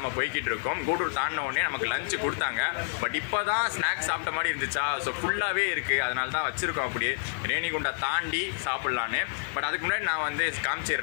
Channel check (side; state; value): right; silent; digital silence